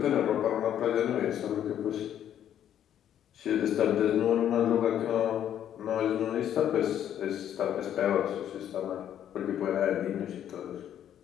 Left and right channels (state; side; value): quieter; right; 10.3 dB